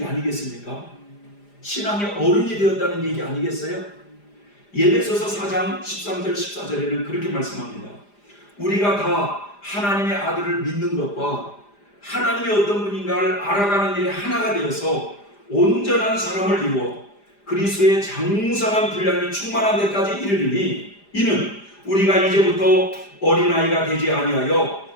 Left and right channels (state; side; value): late; right; 4.9 ms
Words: 아니겠습니까? 신앙의 어른이 되었다는 얘기 아니겠어요? 에베소서 4장 13절 14절에는 그렇게 말씀합니다. 우리가 다 하나님의 아들을 믿는 것과 하나님이 어떤 분인가를 알아가는 일에 하나가 되어서 온전한 사람을 이루어 그리스도의 장성한 분량이 충만한 데까지 이르리니 이는 우리가 이제부터 어린아이가 되지 아니하여